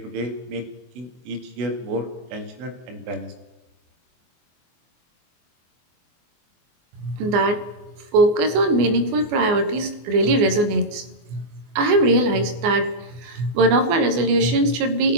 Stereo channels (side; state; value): left; late; 24 ms